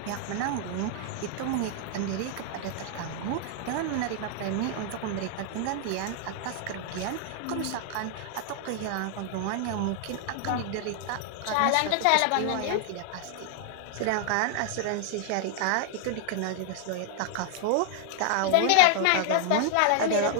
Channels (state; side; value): different; both; correlation 0.00